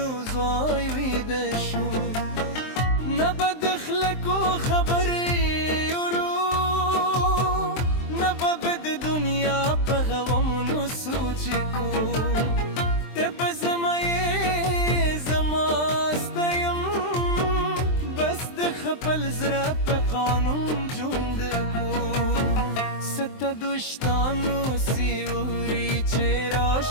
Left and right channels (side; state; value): right; late; 23 ms